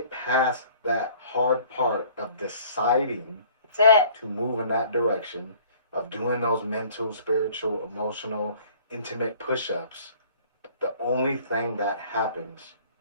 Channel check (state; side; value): inverted; both; correlation -0.53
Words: past that hard part of deciding to move in that direction, of doing those mental, spiritual, emotional, intimate push-ups, the only thing that happens